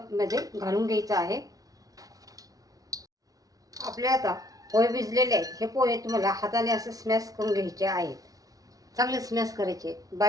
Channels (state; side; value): late; left; 0.18 ms